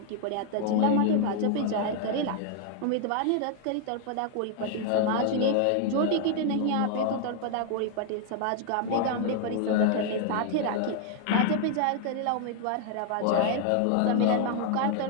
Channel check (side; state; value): both; different; correlation 0.00